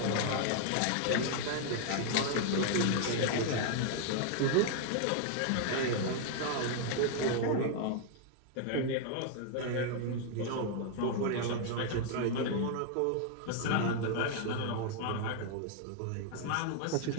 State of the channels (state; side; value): different; both; correlation 0.00